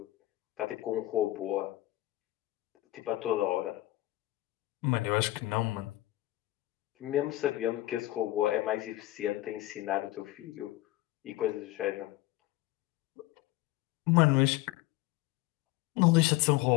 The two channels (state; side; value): quieter; right; 17.2 dB